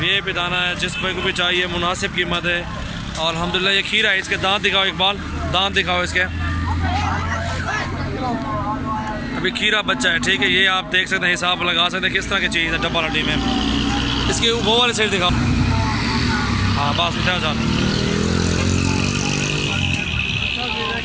दाना है, जिस भाई को भी चाहिए मुनासिब कीमत है। और अल्हम्दुलिल्लाह ये खीरा है, इसके दांत दिखाओ इकबाल, दांत दिखाओ इसके। अभी खीरा बच्चा है। ठीक है, ये आप देख सकते हैं, हिसाब लगा सकते हैं किस तरह की चीज़ है डब्बा हड्डी में। इसकी वो वाली साइड दिखाओ। हाँ बस उठा जा।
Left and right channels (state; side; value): identical; both; correlation 1.00